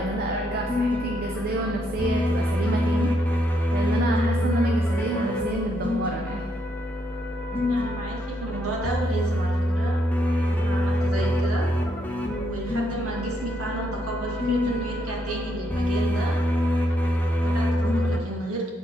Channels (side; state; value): both; normal; correlation 0.76